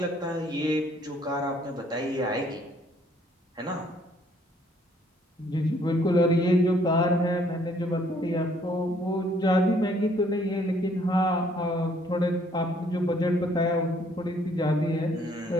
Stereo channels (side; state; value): both; normal; correlation 0.64